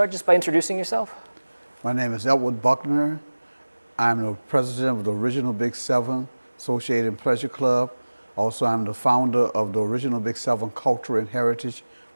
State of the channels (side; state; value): both; inverted; correlation -1.00